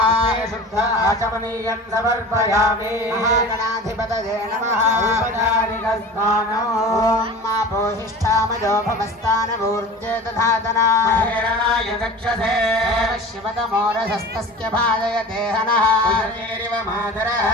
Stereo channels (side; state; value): both; normal; correlation 0.37